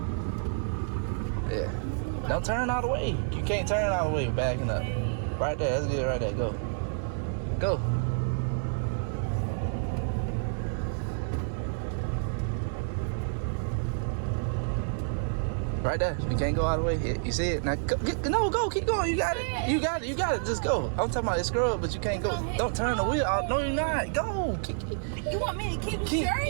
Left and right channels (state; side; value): silent; left; digital silence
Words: Yeah. Don't turn all the way. You can't turn all the way backing up. Right there, that's good right there, go. Go. Right there. You can't go all the way. You see it? Now go, go, keep going. You got it. You got it. You got it. Just go. I'm talking about it's scrub, but you can't go. Don't turn the wheel out. No, you're not. Go. You want me to keep it